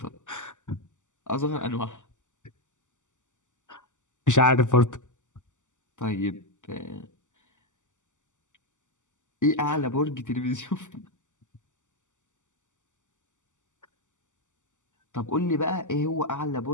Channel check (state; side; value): late; right; 0.86 ms